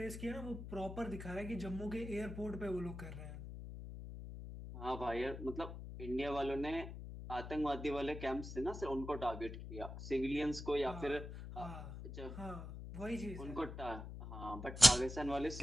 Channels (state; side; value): noise; left; hum, 9 dB below the sound